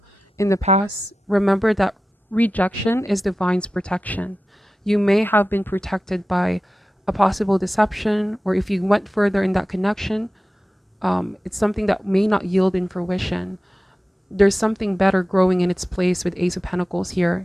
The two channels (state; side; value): normal; both; correlation 0.94